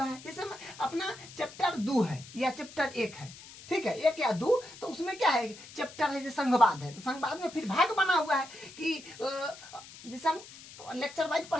है। जैसे अपना चैप्टर 2 है या चैप्टर 1 है, ठीक है, 1 या 2, तो उसमें क्या है, चैप्टर है जैसे संघवाद है, तो संघवाद में फिर भाग बना हुआ है कि जैसे हम लेक्चर वाइज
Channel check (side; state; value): left; noise; hiss, 17 dB below the sound